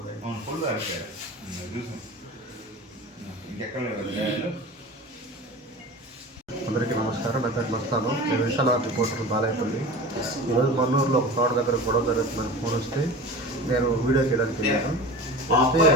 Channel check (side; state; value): both; normal; correlation 0.34